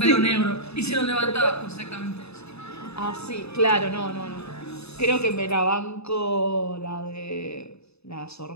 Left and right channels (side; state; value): right; late; 0.79 ms